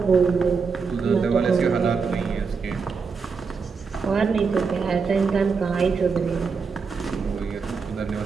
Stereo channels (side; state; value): left; quieter; 5.2 dB